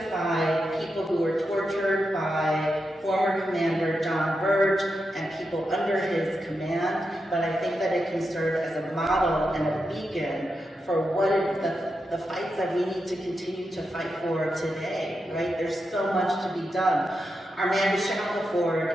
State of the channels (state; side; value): normal; both; correlation 0.87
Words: people who were tortured by former Commander John Burge and people under his command, but I think that it can serve as a model and a beacon for what the fights that we need to continue to fight for today, right? There's so much to be done. Armanda